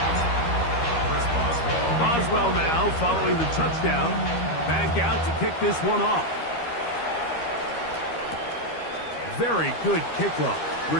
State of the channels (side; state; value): right; late; 13 ms